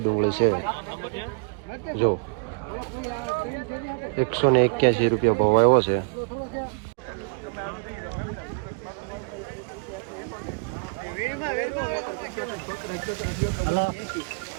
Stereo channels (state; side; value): quieter; left; 35.0 dB